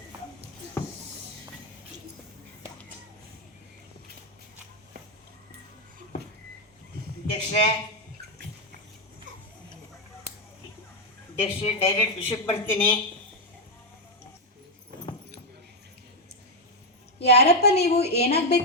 ಅಧ್ಯಕ್ಷೆ, ಡೈರೆಕ್ಟ್ ವಿಷಯಕ್ಕೆ ಬರ್ತೀನಿ. ಯಾರಪ್ಪ ನೀವು?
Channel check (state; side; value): normal; both; correlation 0.03